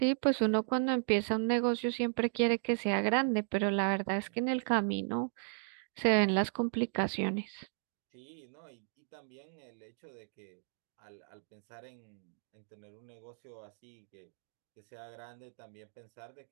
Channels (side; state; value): left; silent; digital silence